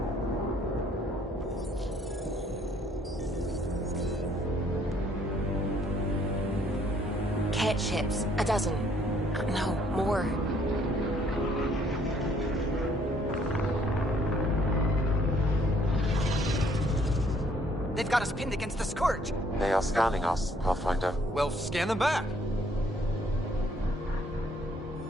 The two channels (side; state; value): both; normal; correlation 0.64